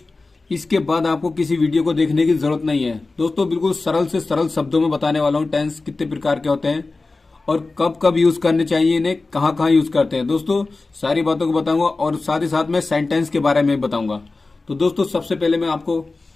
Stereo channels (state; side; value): quieter; right; 3.6 dB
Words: इसके बाद आपको किसी वीडियो को देखने की जरूरत नहीं है। दोस्तों बिल्कुल सरल से सरल शब्दों में बताने वाला हूँ टेंस कितने प्रकार के होते हैं और कब कब यूज करने चाहिए, इन्हें कहाँ कहाँ यूज करते हैं। दोस्तों सारी बातों को बताऊंगा और साथ ही साथ मैं सेंटेंस के बारे में बताऊंगा। तो दोस्तों सबसे पहले मैं आपको